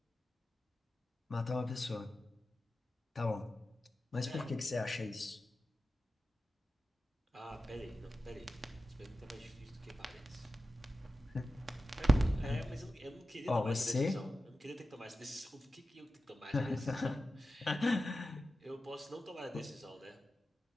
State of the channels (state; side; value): normal; both; correlation 0.92